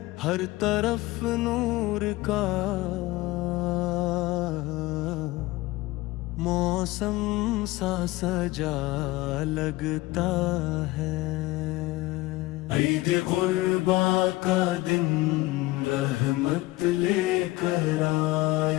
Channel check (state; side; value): quieter; right; 19.4 dB